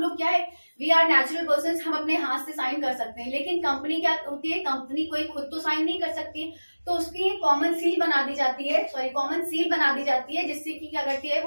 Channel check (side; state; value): both; inverted; correlation -1.00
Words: लोग क्या है, वी आर नेचुरल पर्सन, हम अपने हाथ से साइन कर सकते हैं, लेकिन कंपनी क्या होती है, कंपनी कोई खुद तो साइन नहीं कर सकती, तो उसकी कॉमन सील बना दी जाती है, कॉमन सील बना दी जाती है, जिससे कि क्या करती है,